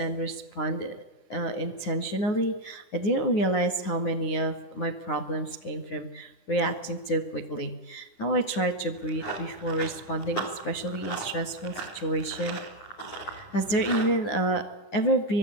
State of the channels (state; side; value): late; right; 10 ms